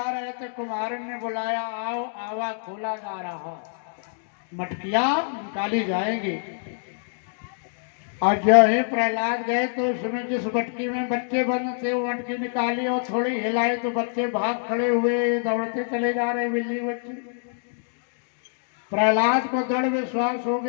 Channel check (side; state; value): right; silent; digital silence